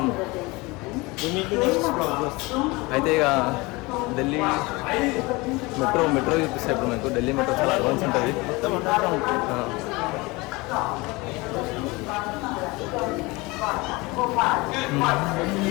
అయితే ఇక ఢిల్లీ మెట్రో చూపిస్తాయి ఇప్పుడు మీకు. ఢిల్లీ మెట్రో చాలా అడ్వాన్స్ ఉంటుంది.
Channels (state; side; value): quieter; right; 23.8 dB